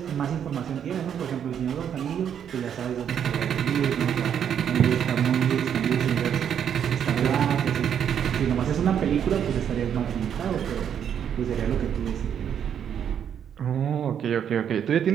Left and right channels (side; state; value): left; quieter; 8.7 dB